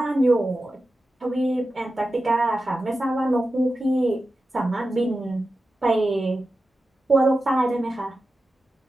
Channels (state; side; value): normal; both; correlation 0.92